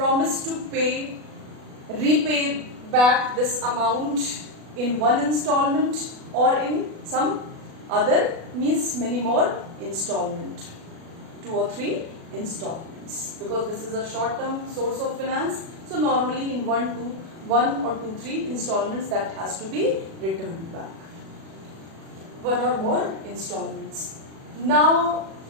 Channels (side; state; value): left; late; 37 ms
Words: to repay back this amount in one installment or in some other, means many more installment, 2 or 3 installments, because this is a short-term source of finance. So normally in 1 or 2, 3 installments that has to be returned back. 1 or more installments. Now